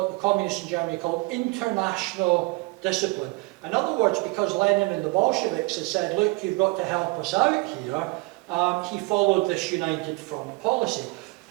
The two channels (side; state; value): left; quieter; 25.6 dB